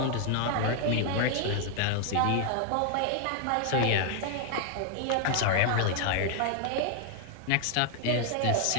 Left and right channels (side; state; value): both; different; correlation 0.00